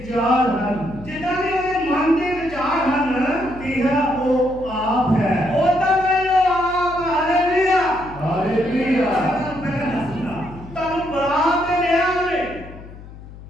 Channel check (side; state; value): left; noise; hum, 16 dB below the sound